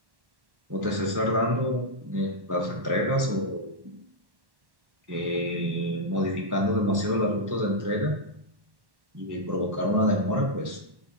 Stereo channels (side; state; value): left; late; 1.1 ms